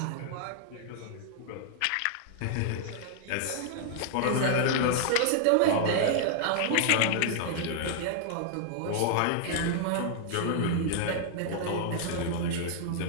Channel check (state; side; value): different; both; correlation -0.01